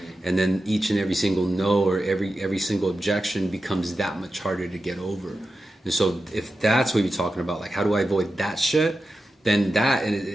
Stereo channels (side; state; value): both; normal; correlation 0.91